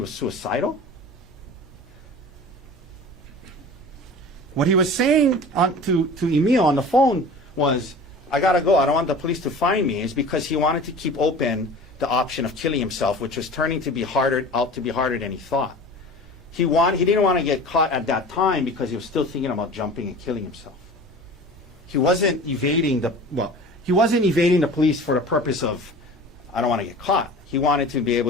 suicidal. What he was saying to Emil on the phone was, I gotta go, I don't want the police to find me, is because he wanted to keep open the option of killing himself, which was turning to be harder than he thought. He didn't want to get caught at that time because he was still thinking about jumping and killing himself. He wasn't evading the police for the purpose of, I don't want to get caught. He wanted to be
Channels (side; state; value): both; normal; correlation 0.38